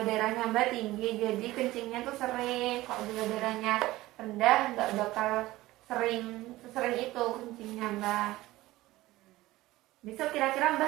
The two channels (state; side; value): quieter; left; 17.7 dB